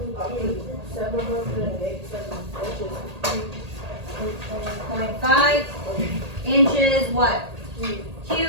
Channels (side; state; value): left; late; 1.8 ms